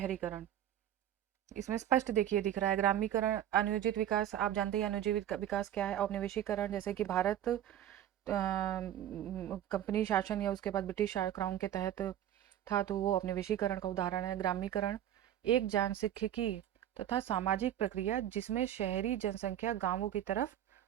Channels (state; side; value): quieter; left; 11.3 dB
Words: इसमें स्पष्ट देखिए दिख रहा है ग्रामीकरण, अनियोजित विकास। आप जानते हैं अनियोजित विकास क्या है। औपनिवेशीकरण, जैसे कि भारत कंपनी शासन या उसके बाद ब्रिटिश क्राउन के तहत था, तो वो औपनिवेशीकरण का उदाहरण है। ग्रामीकरण एक जनसांख्यिकी तथा सामाजिक प्रक्रिया जिसमें शहरी जनसंख्या गांवों की तरफ